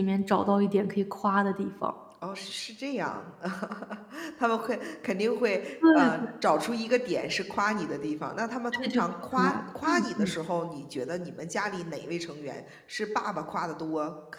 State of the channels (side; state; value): both; identical; correlation 1.00